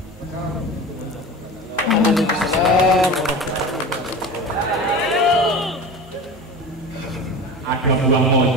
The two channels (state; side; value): normal; both; correlation 0.32